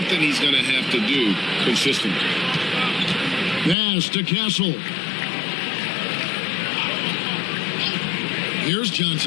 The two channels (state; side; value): drops out; right; at 3.8 s